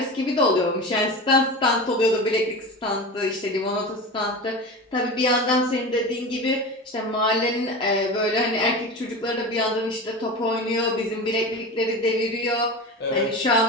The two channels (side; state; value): both; normal; correlation 0.28